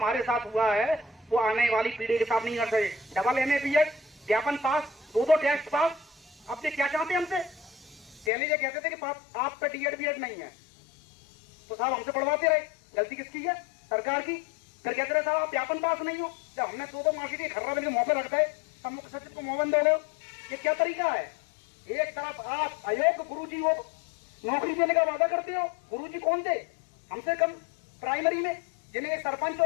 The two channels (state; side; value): drops out; right; at 8.3 s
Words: साथ हुआ है, वो आने वाली पीढ़ी के साथ नहीं कर सके। डबल MA BEd, ज्ञापन पास, 2 टेस्ट पास। अब ये क्या चाहते हैं हमसे? पहले ये कहते थे कि आप पे DEd BEd नहीं है, तो साहब हमसे पढ़वाते रहे। गलती किसकी है? सरकार की। फिर कहते रहे साहब आप ज्ञापन पास नहीं हो। जब हमने 2 मार्कशीट खर्रा बन के मुंह पे रखता है, तब मुख्य सचिव को मोहन दोगे। ये क्या तरीका है? एक तरफ आप अयोग्य गुरुजी को नौकरी देने का वादा करते हो। गुरुजी कौन थे? हमसे कम प्राइमरी में, जिन्हें एक सरपंच